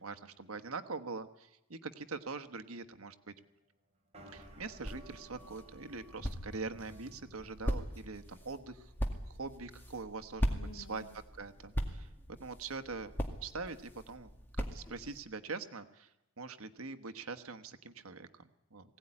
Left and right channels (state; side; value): normal; both; correlation 0.52